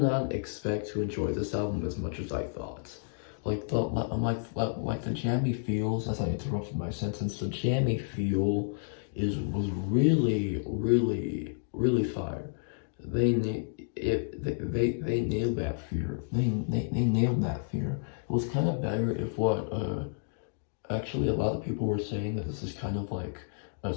not expect to enjoy this album as much as I thought. Like the jammy feels, as I interrupted my sentence, the jammy feel was really fire. They nailed that fear. They nailed that fear. It was kind of better if what actually a lot of people were saying that this is kind of like a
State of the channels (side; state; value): right; silent; digital silence